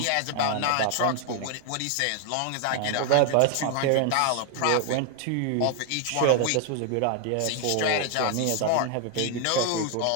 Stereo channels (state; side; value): different; both; correlation 0.01